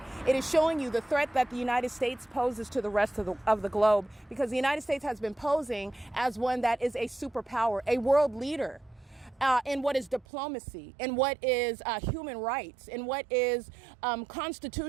it is showing you the threat that the United States poses to the rest of the globe, because the United States has been posing as one that is a superpower, a world leader in what is diplomacy, in what is human rights, in what is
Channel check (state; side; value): drops out; left; at 10.2 s